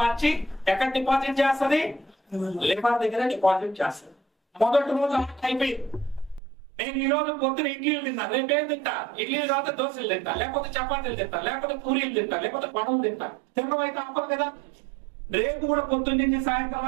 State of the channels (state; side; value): drops out; left; at 6.4 s